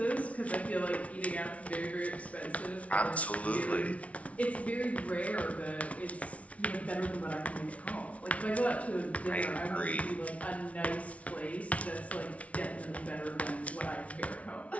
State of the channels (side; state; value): right; late; 0.065 ms